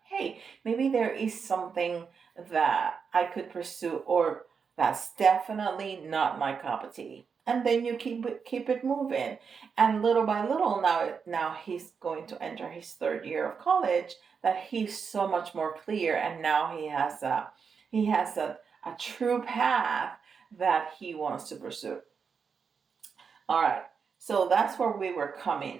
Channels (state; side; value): quieter; left; 6.0 dB